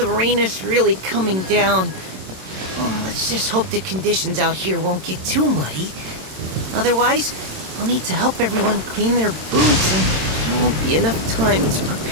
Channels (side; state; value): left; late; 27 ms